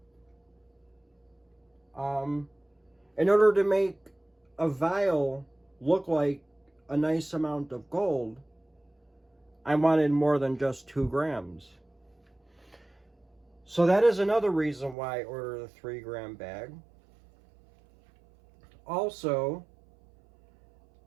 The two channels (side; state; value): left; drops out; at 15.0 s